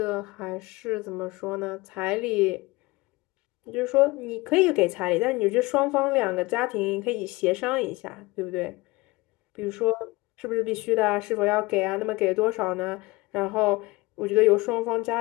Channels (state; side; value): quieter; right; 22.6 dB